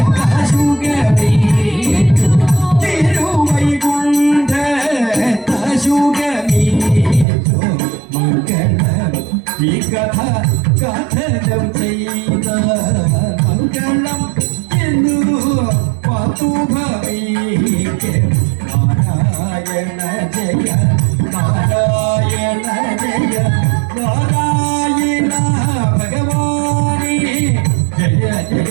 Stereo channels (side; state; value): left; drops out; at 7.2 s